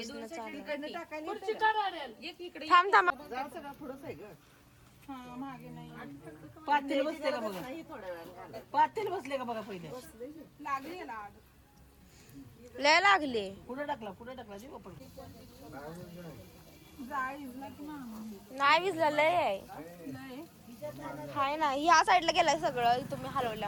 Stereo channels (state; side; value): identical; both; correlation 1.00